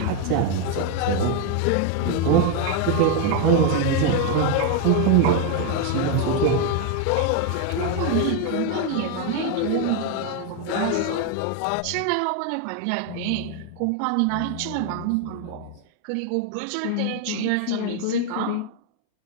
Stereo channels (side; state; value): both; different; correlation 0.01